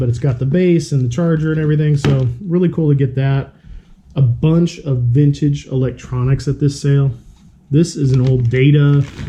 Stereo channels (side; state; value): both; identical; correlation 1.00